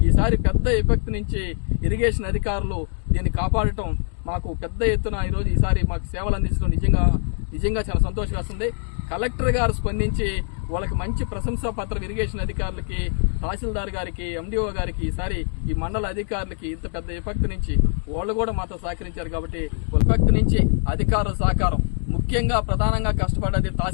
ఈసారి పెద్ద విపత్తు నుంచి ఇరిగేషన్ అధికారులు దీన్ని కాపాడటం మాకు పెద్ద ఎత్తున ఈసారి మాకు సేవలు అందించడం నిజంగా చాలా సంతోషం వేస్తుంది. కలెక్టర్ గారు స్పందించి వాళ్ళకి మంచి ప్రశంసా పత్రం ఇరిగేషన్ అధికారులకి, తహసీల్దార్ గారికి, ఎండిఓ గారికి, ఈసారి ఈ మండల అధికారులకి ఇంత పెద్ద విపత్తు నుంచి వాళ్ళు కూడా మాతో సహకరించారు. కాబట్టి విపత్తు నుంచి అధికారుల సహకారం, ముఖ్యంగా ప్రధానంగా కష్టపడ్డది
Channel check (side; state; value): right; silent; 55 dB below the other